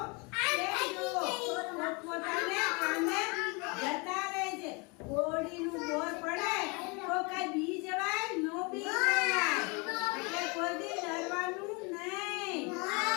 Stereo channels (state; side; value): quieter; right; 30.4 dB